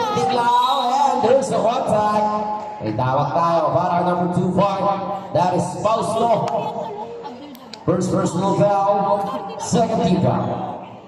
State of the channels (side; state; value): both; identical; correlation 1.00